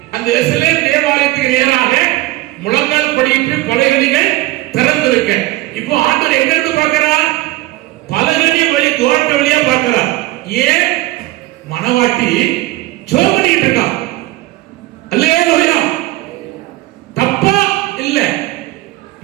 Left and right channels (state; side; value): quieter; left; 18.0 dB